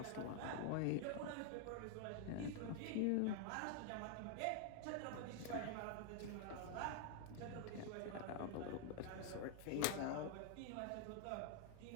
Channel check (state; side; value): different; both; correlation 0.00